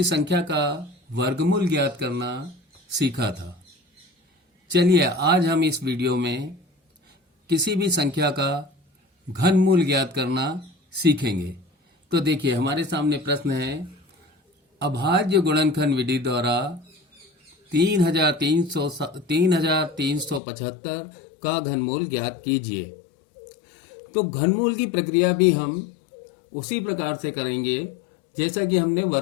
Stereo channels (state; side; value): drops out; right; at 20.4 s